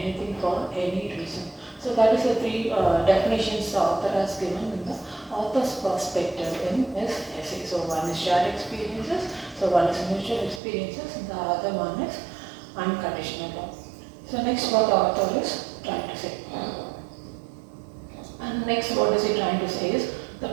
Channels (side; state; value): left; drops out; at 10.6 s